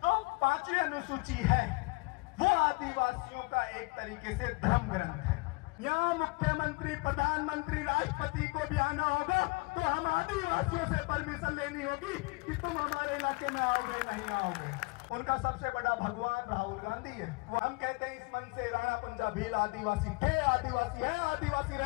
तो 5वीं अनुसूची है वो आदिवासियों का एक तरीके से धर्म ग्रंथ है। यहाँ मुख्यमंत्री, प्रधानमंत्री, राष्ट्रपति को भी आना होगा तो हम आदिवासियों से परमिशन लेनी होगी कि तुम हमारे इलाके में आओगे नहीं आओगे। उनका सबसे बड़ा भगवान राहुल गांधी है। वो हम कहते हैं इस मन से राणा पंजा भील आदिवासी थे, आदिवासी है, आदिवासी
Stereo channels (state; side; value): quieter; right; 27.5 dB